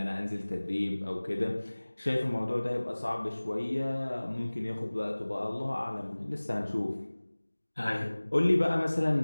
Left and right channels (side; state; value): both; inverted; correlation -1.00